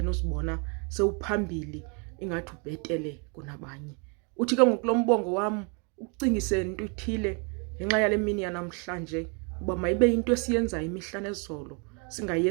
uzibona sewuphambili ingathi ubhetele kunabanye. Uthi ke ngoku lo mbongo wam ukucingise into ithile ngenxa yale mini yanamhlanje, uba mayibe into esiyenzayo imihla nezolo,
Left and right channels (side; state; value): left; quieter; 35.4 dB